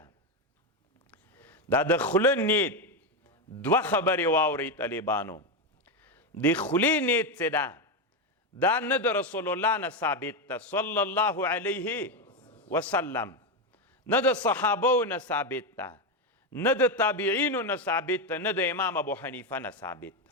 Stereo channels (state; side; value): normal; both; correlation 0.09